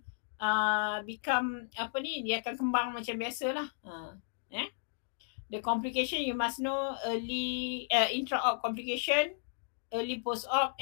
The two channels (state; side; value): silent; right; digital silence